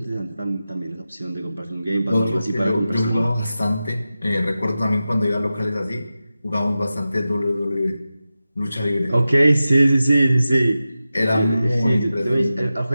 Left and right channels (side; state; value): both; inverted; correlation -0.93